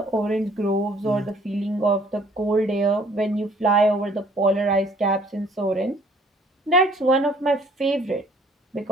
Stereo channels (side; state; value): both; normal; correlation 0.58